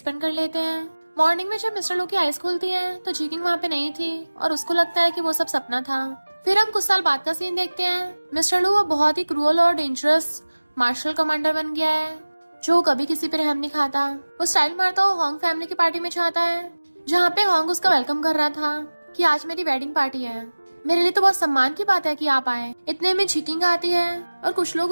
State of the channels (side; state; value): both; inverted; correlation -1.00